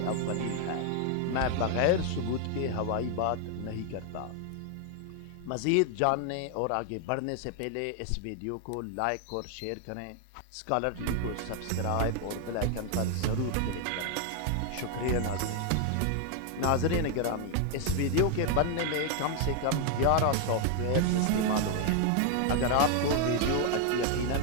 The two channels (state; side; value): different; both; correlation 0.00